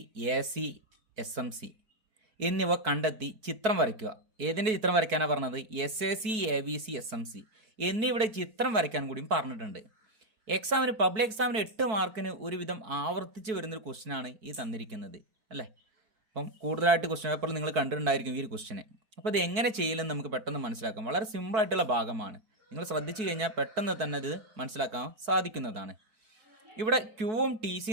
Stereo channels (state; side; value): late; left; 4.6 ms